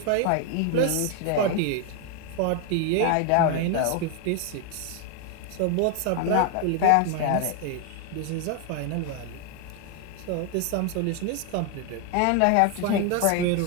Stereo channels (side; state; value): both; different; correlation 0.01